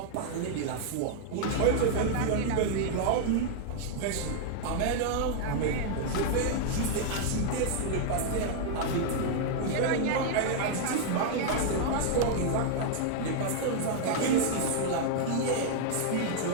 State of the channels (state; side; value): different; both; correlation -0.01